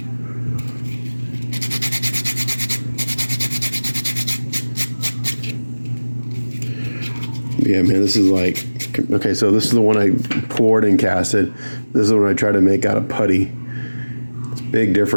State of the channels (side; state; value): both; inverted; correlation -1.00